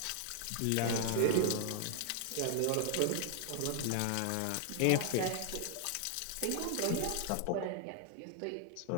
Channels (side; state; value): both; different; correlation 0.00